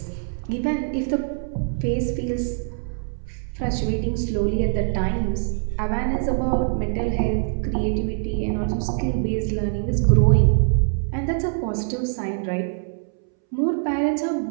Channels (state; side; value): silent; left; 63 dB below the other